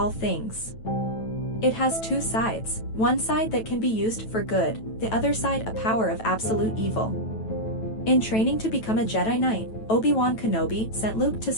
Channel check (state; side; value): late; right; 9.1 ms